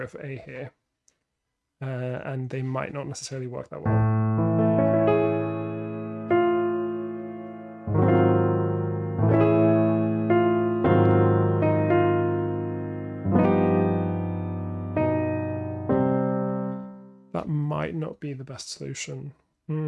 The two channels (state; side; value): identical; both; correlation 1.00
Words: for A here, and they might not necessarily work that well. That might not be the best solution.